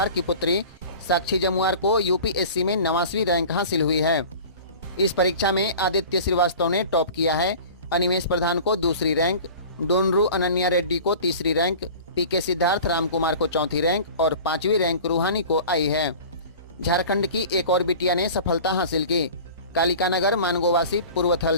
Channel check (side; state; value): both; inverted; correlation -0.40